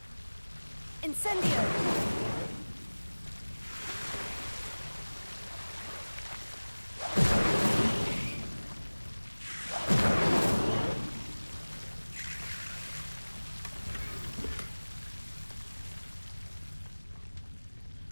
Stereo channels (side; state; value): both; inverted; correlation -1.00